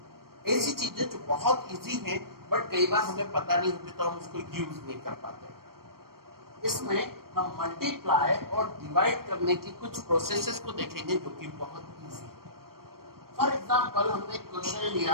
ऐसी चीजें जो बहुत इजी हैं बट कई बार हमें पता नहीं होती तो हम उसको यूज नहीं कर पाते। इसमें हम मल्टीप्लाई और डिवाइड करने की कुछ प्रोसेसेस को देखेंगे जो कि बहुत इजी है। फॉर एग्जांपल, हमने क्वेश्चन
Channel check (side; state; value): left; late; 0.93 ms